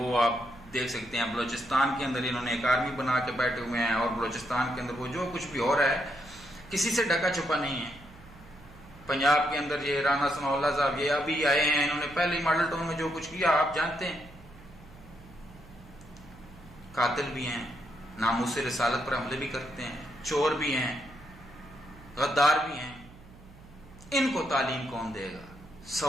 آپ دیکھ سکتے ہیں۔ بلوچستان کے اندر انہوں نے ایک آرمی بنا کے بیٹھے ہوئے ہیں، اور بلوچستان کے اندر وہ جو کچھ بھی ہو رہا ہے کسی سے ڈھکا چھپا نہیں ہے۔ پنجاب کے اندر یہ رانا ثناء اللہ صاحب یہ ابھی آئے ہیں، انہوں نے پہلے ہی ماڈل ٹاؤن میں جو کچھ کیا آپ جانتے ہیں۔ قاتل بھی ہیں، ناموس رسالت پر حملے بھی کرتے ہیں، چور بھی ہیں، غدار بھی ہیں۔ ان کو تعلیم کون دے گا؟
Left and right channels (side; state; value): right; noise; hum, 21 dB below the sound